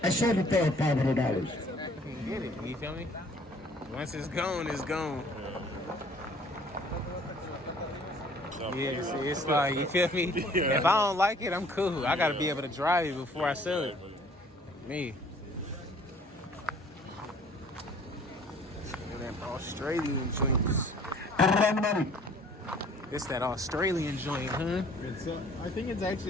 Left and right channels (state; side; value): normal; both; correlation 0.55